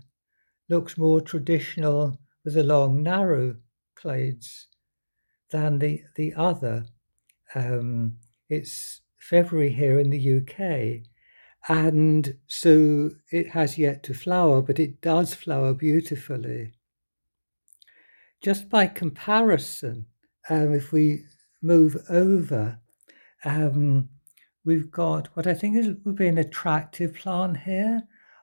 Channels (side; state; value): both; inverted; correlation -1.00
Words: looks more traditional with the long, narrow clades than the other. It's February here in the UK, and so it has yet to flower, but it does flower beautifully. Just by comparison, if we move over, we've got what I think would be an attractive plant here